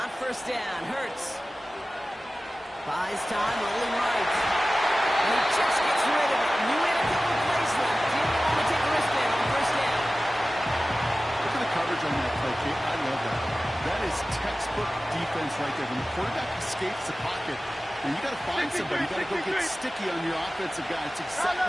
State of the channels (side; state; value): both; normal; correlation 0.96